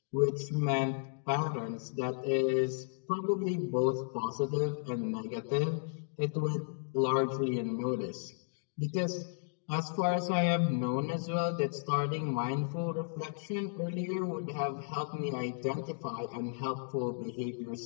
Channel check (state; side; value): silent; right; digital silence